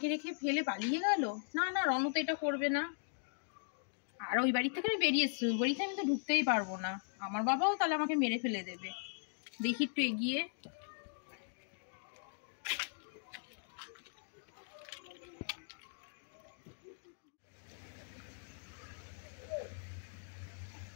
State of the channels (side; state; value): right; silent; digital silence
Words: রেখে ফেলে পালিয়ে গেল? না না, রণ তো এটা করবে না। আর ওই বাড়ি থেকে আমি বেরিয়ে এসছি, ওই বাড়িতে আমি তো ঢুকতেই পারবো না। আমার বাবাও তাহলে আমাকে মেরে ফেলে দেবে। দেখি একটু এগিয়ে।